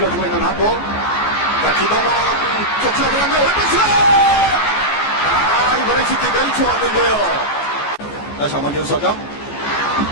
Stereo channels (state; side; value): late; right; 14 ms